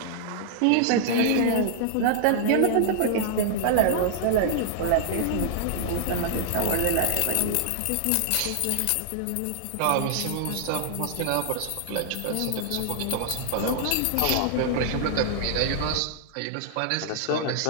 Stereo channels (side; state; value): both; different; correlation -0.01